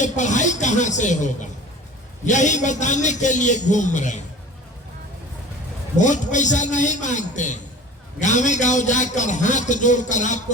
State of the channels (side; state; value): both; normal; correlation 0.40